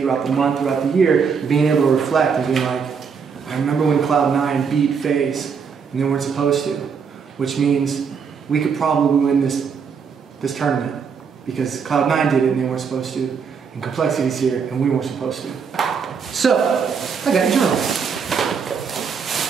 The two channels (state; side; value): quieter; left; 6.2 dB